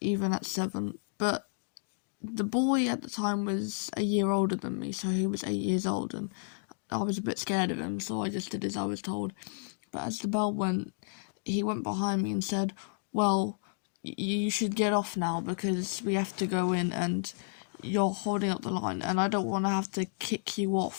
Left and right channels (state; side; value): silent; right; digital silence